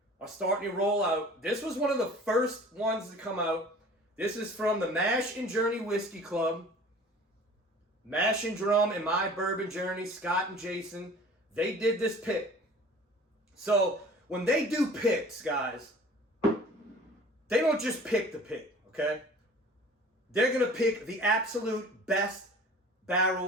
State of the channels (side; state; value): both; normal; correlation 0.46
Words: are starting to roll out. This was one of the first ones to come out. This is from the Mash and Journey Whiskey Club. Mash and Drum and My Bourbon Journey, Scott and Jason, they did this pick. So when they do picks, guys, they don't just pick the pick, okay? They're going to pick the absolute best